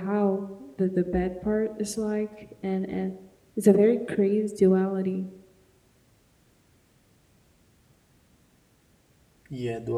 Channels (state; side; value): identical; both; correlation 1.00